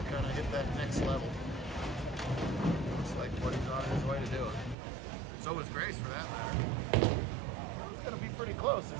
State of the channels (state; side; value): drops out; left; at 4.8 s